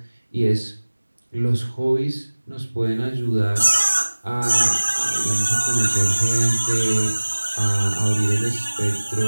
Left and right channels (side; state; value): both; inverted; correlation -1.00